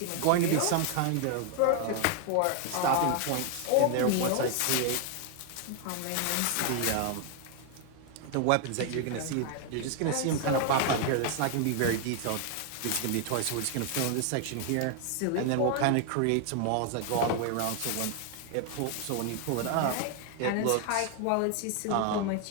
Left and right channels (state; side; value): different; both; correlation 0.00